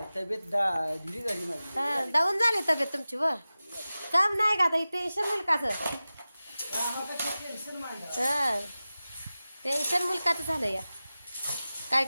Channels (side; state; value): both; inverted; correlation -0.96